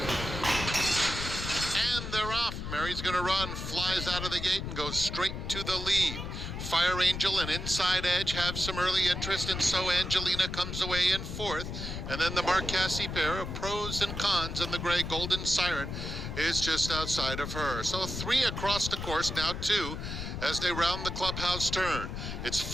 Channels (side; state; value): left; noise; rumble, 6 dB below the sound